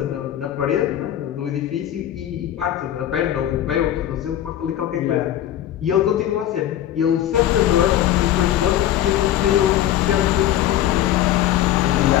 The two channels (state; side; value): quieter; right; 12.1 dB